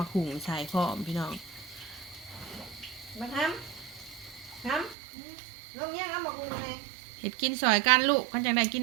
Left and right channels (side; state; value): left; drops out; at 5.0 s